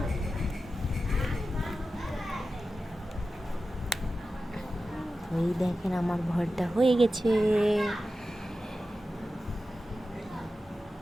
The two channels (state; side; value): normal; both; correlation 0.93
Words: এই দেখেন আমার ভর্তা হয়ে গেছে।